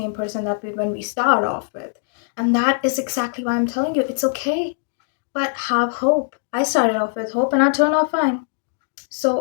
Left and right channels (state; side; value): silent; right; 62 dB below the other